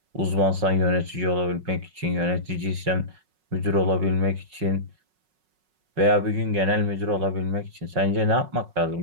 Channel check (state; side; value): late; left; 5.4 ms